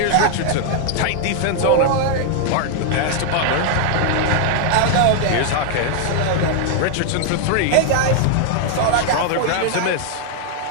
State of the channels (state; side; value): different; both; correlation 0.00